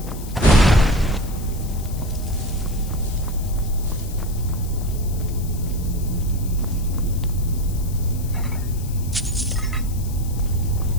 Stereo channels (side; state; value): left; noise; hiss, 16 dB below the sound